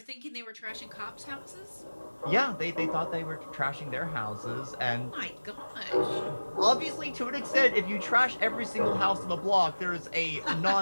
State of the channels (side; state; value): both; inverted; correlation -1.00